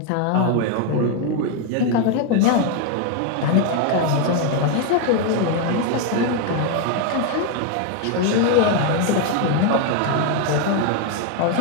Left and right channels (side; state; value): both; different; correlation 0.01